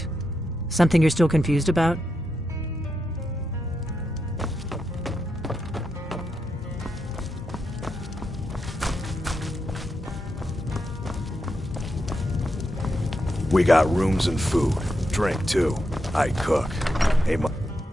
Something you're still confused about? We got rooms and food. Drink, too. I cook. Hey,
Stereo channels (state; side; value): normal; both; correlation 0.85